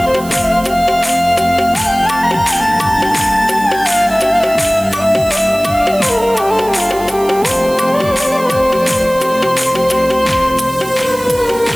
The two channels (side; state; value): right; noise; hiss, 16 dB below the sound